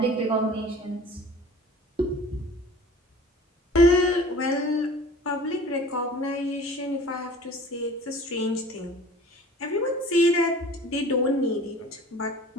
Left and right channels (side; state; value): both; normal; correlation 0.45